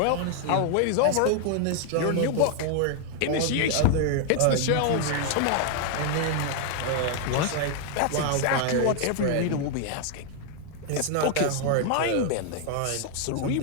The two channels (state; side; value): different; both; correlation 0.00